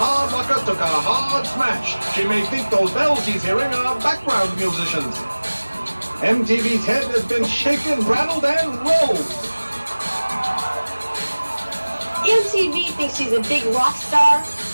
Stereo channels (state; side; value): inverted; both; correlation -1.00